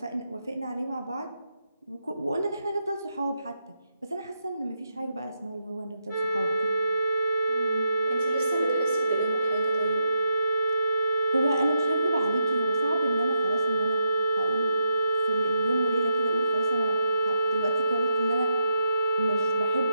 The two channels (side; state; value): both; inverted; correlation -0.82